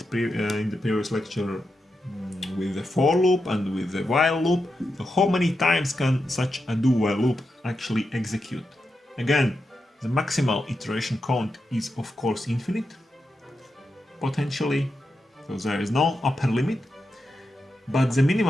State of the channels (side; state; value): both; normal; correlation 0.87